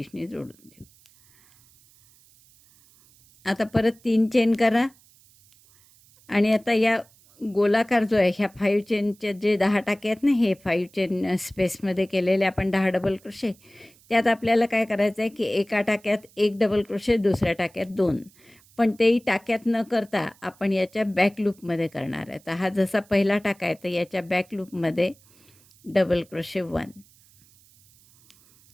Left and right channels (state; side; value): noise; right; hiss, 29 dB below the sound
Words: जोडून देऊ. आता परत 3 चेन करा आणि आता या गोलाकार जो आहे ह्या 5 चेनचे जे 10 टाके आहेत ना, हे 5 चेन स्पेसमध्ये केलेले आपण 10 डबल क्रोशे, त्यात आपल्याला काय करायचं आहे की एका टाक्यात 1 डबल क्रोशे, दुसऱ्या टाक्यात 2, पण तेही टाक्यात न करता आपण याच्या बॅक लूपमध्ये करणार आहे. तर हा जसा पहिला टाका आहे तर याच्या बॅक लूपमध्ये डबल क्रोशे 1,